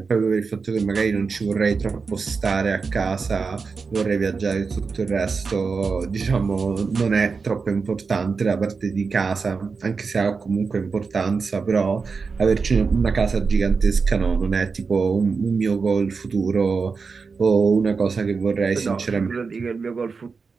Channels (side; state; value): left; quieter; 4.9 dB